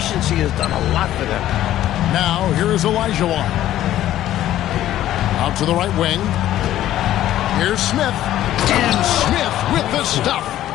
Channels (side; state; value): right; quieter; 13.1 dB